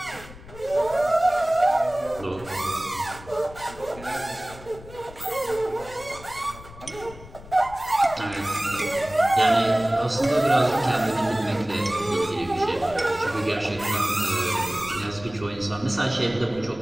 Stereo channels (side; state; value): left; noise; rumble, 18 dB below the sound